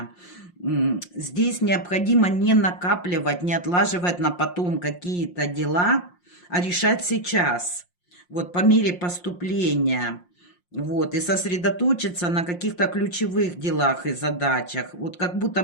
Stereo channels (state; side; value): late; right; 5.6 ms